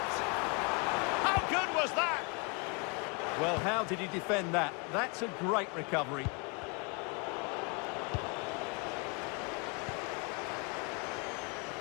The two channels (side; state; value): right; quieter; 33.4 dB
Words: How good was that? Well, how did he defend that? That's a great recovery.